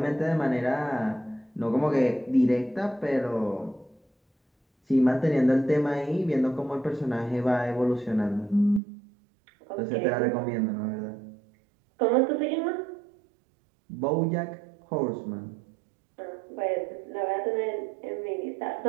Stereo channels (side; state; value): left; drops out; at 8.8 s